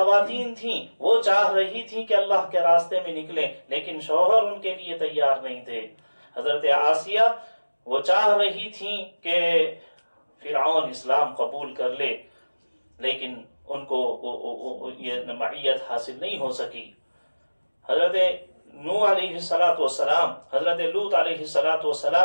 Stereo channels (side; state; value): both; inverted; correlation -1.00